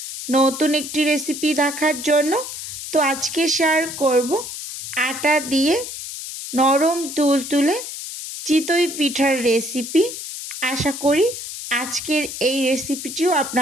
নতুন একটি রেসিপি দেখার জন্য। তো আজকে শেয়ার করব আটা দিয়ে নরম তুলতুলে চিতই পিঠার রেসিপি। আশা করি আজকের এই রেসিপিটিও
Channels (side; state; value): left; noise; hiss, 8 dB below the sound